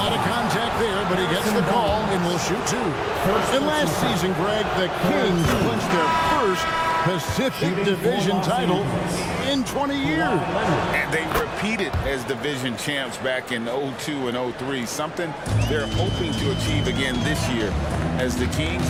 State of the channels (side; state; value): both; identical; correlation 1.00